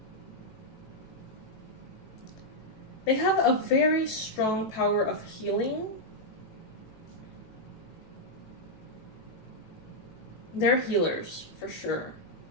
They have a very strong power of healing. They're healers, for sure.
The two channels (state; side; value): late; right; 18 ms